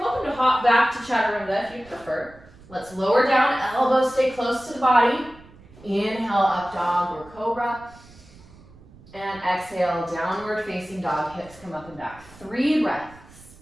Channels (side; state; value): right; noise; rumble, 23 dB below the sound